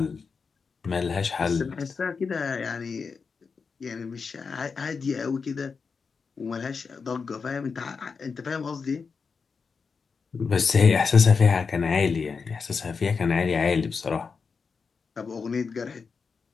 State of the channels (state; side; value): quieter; right; 5.3 dB